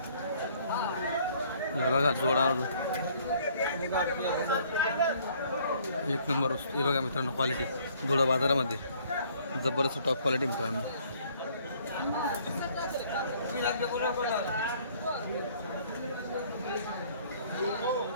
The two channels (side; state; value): both; inverted; correlation -0.60